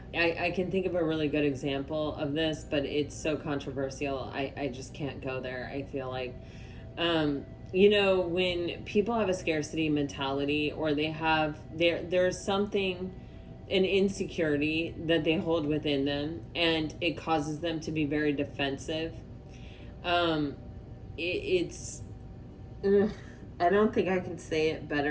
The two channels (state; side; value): identical; both; correlation 1.00